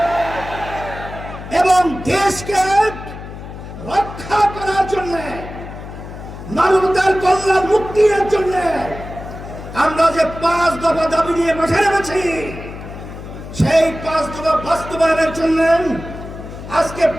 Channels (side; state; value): left; noise; hum, 12 dB below the sound